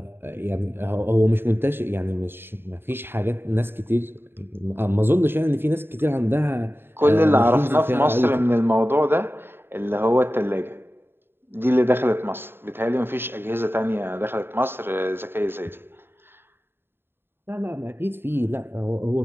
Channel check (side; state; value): left; late; 0.11 ms